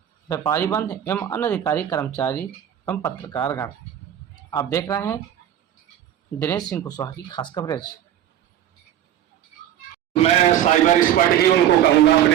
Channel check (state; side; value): quieter; left; 11.0 dB